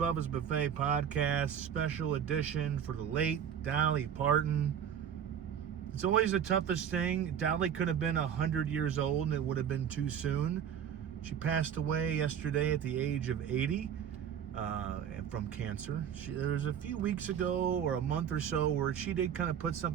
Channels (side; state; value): left; quieter; 8.7 dB